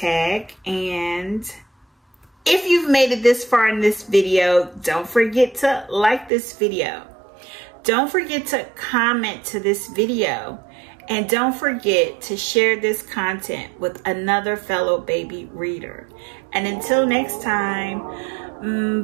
And if you've made it this far in this video, don't forget to like this video. Don't forget to comment to this video. And don't forget to share this content with another fellow baby reader. And until next time,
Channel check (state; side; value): drops out; left; at 6.3 s